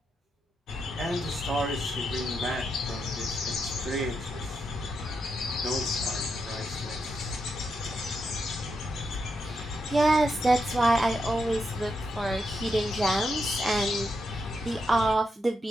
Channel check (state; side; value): normal; both; correlation 0.83